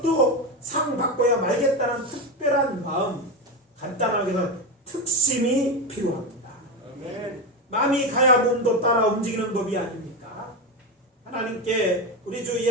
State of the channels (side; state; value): both; normal; correlation 0.15